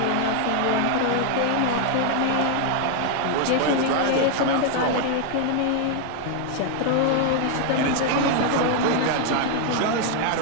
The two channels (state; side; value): different; both; correlation 0.00